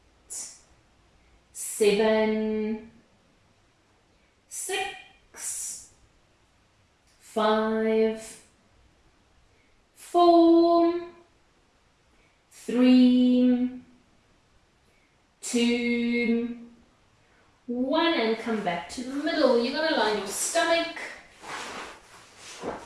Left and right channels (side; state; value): both; identical; correlation 1.00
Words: 7, 6, 5, 4, 3, 2, 1, and come back to the middle. You're going to line your stomach.